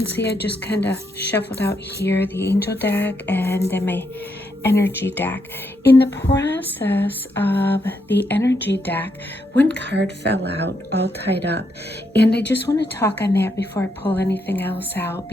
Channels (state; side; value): normal; both; correlation 0.79